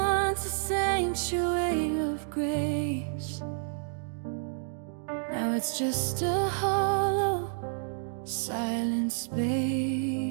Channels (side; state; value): left; silent; digital silence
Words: a sanctuary of grace. Now it's just a hollow, silent